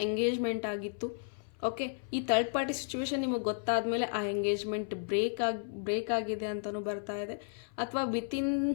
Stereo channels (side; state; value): right; silent; 56 dB below the other